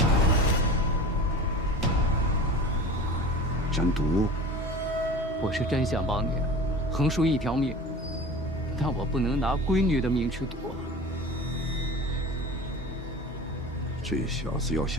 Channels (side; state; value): both; normal; correlation 0.36